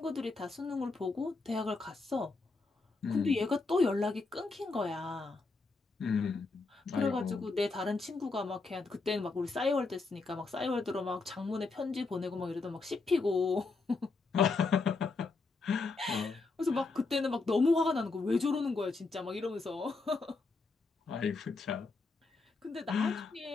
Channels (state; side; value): quieter; right; 3.9 dB